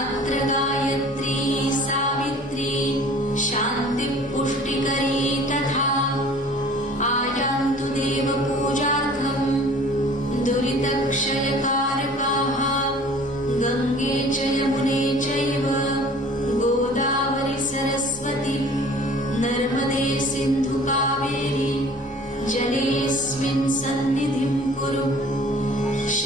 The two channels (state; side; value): normal; both; correlation 0.49